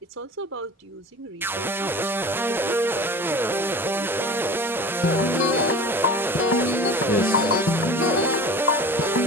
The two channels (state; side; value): normal; both; correlation 0.38